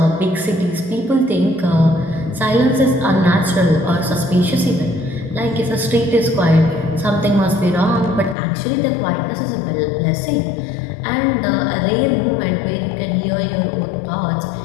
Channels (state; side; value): drops out; right; at 8.3 s